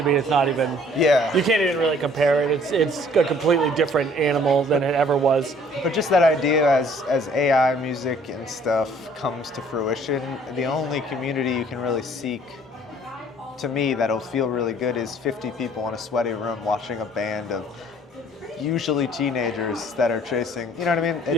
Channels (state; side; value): normal; both; correlation 0.57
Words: be. It's not even. Yeah. You can't even really compare it. It's a completely different animal than it ever was. But just that idea as AI music and stuff comes to fruition, the only community you can really seek, to me, that'll feel really good is 50 people in a sweaty room watching a band of usually teenagers that are chasing, you know what I mean?